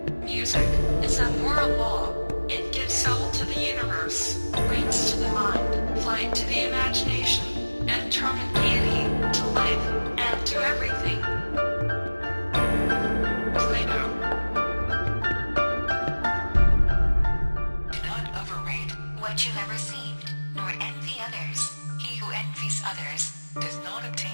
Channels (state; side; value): inverted; both; correlation -1.00